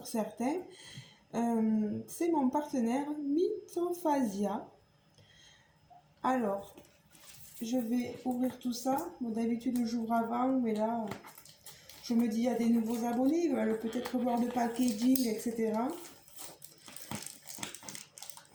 certains. C'est mon partenaire Mythophasia. Alors, je vais ouvrir tout ça. Bon, d'habitude, j'ouvre avant, mais là, je me dis, il y a des nouveaux abonnés, ils veulent peut-être voir le packaging, etc.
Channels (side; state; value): both; identical; correlation 1.00